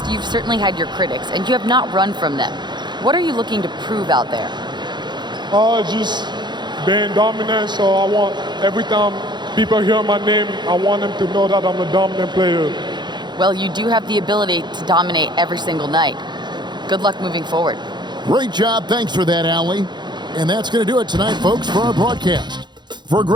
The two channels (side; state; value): left; late; 0.21 ms